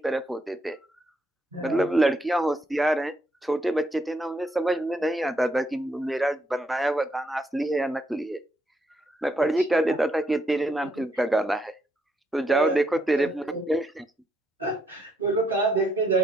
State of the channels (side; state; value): both; normal; correlation 0.75